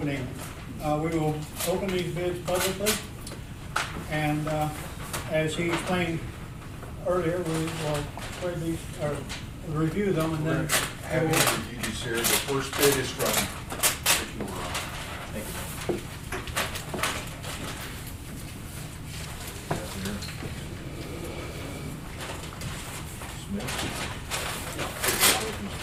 We will open these bids publicly, and as he explained earlier, we will spread these, or review them, and then Having reviewed these here, the first bid is from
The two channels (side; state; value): both; identical; correlation 1.00